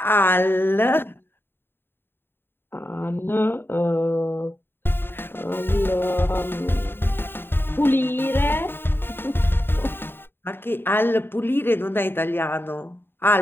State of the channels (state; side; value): late; right; 0.11 ms